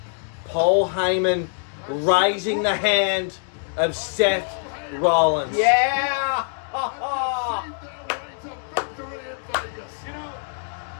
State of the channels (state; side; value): silent; right; 63 dB below the other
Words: Paul Heyman raising the hand of Seth Rollins. Yeah. Ha ha. Their way to victory in Vegas. You know,